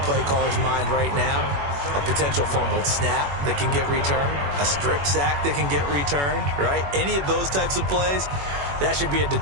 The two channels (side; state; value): left; late; 21 ms